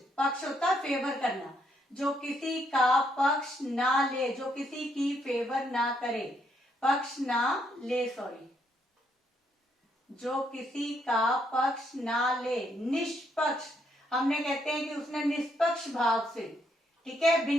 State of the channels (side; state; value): both; normal; correlation 0.74